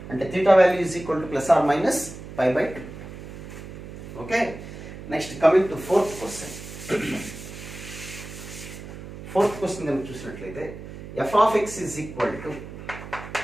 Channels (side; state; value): right; noise; hum, 12 dB below the sound